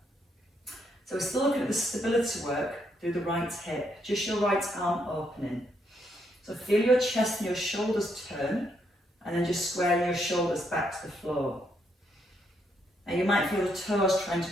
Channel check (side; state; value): both; normal; correlation 0.76